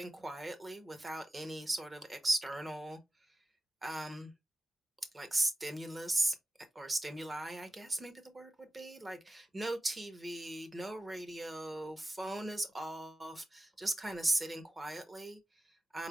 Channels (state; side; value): normal; both; correlation 0.93